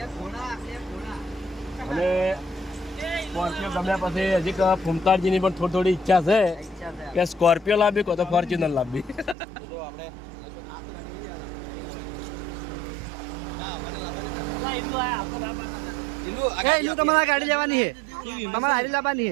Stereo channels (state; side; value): drops out; left; at 9.3 s